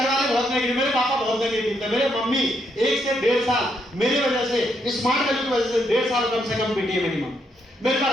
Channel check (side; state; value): both; normal; correlation 0.76